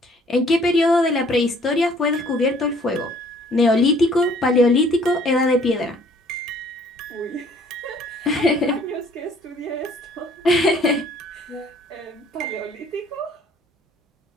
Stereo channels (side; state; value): both; normal; correlation 0.58